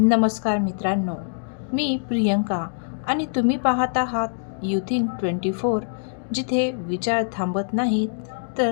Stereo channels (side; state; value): right; silent; digital silence